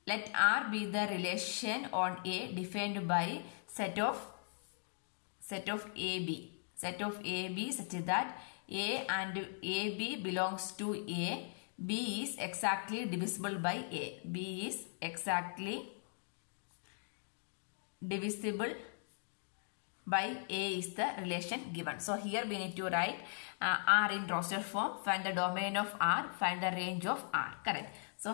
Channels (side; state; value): right; silent; digital silence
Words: Let R be the relation on A defined by set of AB. Set of AB such that A and AB belongs to A. B is exactly divisible by A. B is exactly divisible by A is the relation given. So here we need to write R in roster form. Find the domain of R. Find the range of R. Correct. So